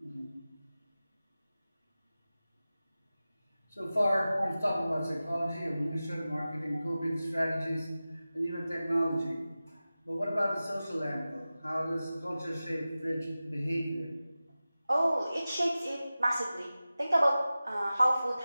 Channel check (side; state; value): both; inverted; correlation -0.96